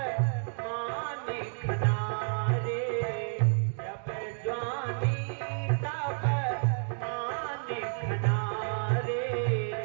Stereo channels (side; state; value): left; silent; 57 dB below the other